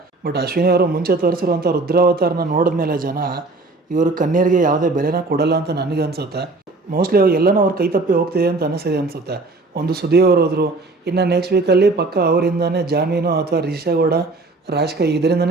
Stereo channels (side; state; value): left; quieter; 3.3 dB